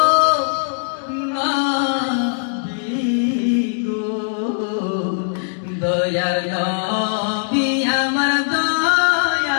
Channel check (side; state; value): right; silent; digital silence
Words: দয়ার নবী আমার